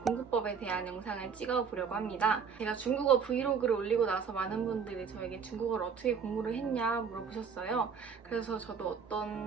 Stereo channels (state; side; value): quieter; left; 6.3 dB